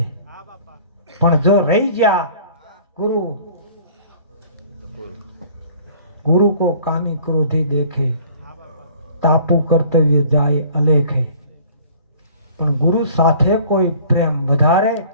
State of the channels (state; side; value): inverted; both; correlation -0.51